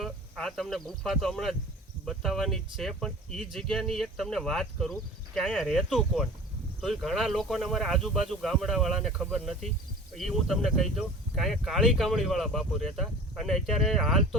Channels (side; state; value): both; normal; correlation 0.40